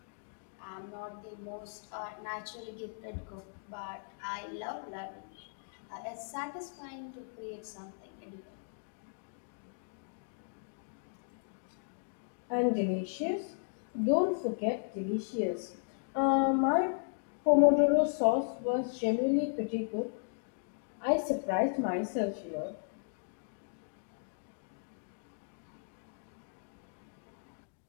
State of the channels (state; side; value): silent; right; digital silence